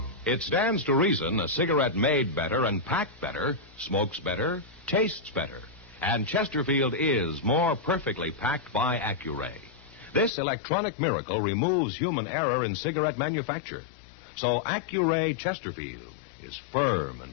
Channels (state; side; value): drops out; right; at 10.3 s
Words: It stands to reason a cigarette made better and packed better smokes better, tastes better. And Chesterfield is more perfectly packed by Accuray. This electronic miracle removes human error in cigarette manufacture. So Accuray Chesterfield is firm